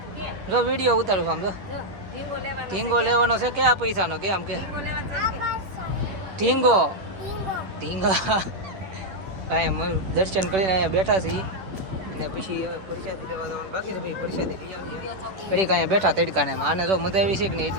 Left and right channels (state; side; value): late; left; 10 ms